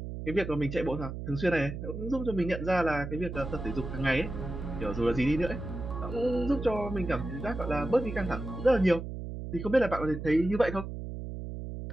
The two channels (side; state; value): right; noise; hum, 7 dB below the sound